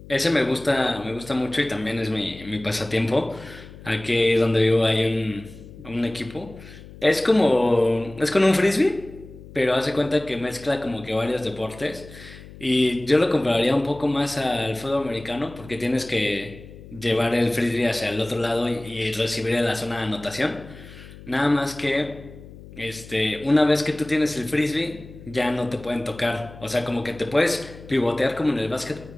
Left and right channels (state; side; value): noise; left; hum, 17 dB below the sound